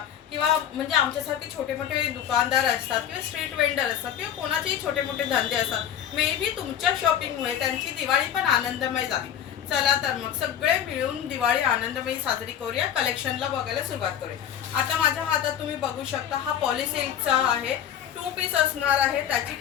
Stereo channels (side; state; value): right; quieter; 9.8 dB